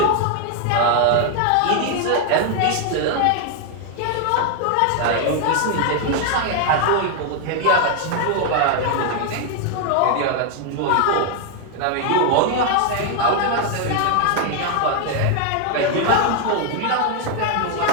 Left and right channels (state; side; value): different; both; correlation 0.00